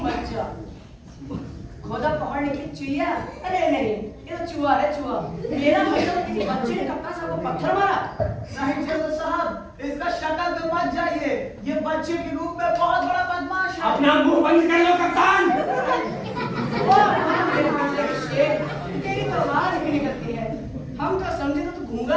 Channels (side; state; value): both; identical; correlation 1.00